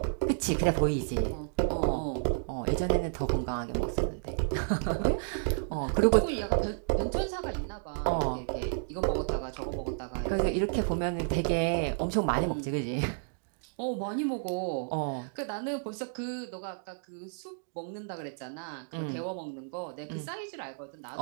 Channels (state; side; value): silent; left; digital silence